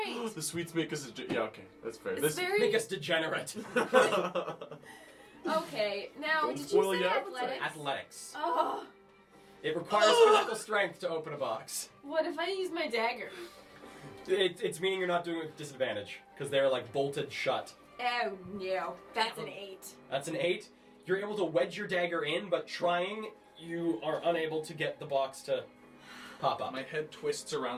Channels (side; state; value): both; identical; correlation 1.00